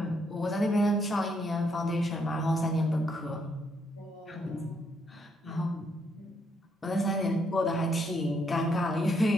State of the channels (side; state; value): both; normal; correlation 0.74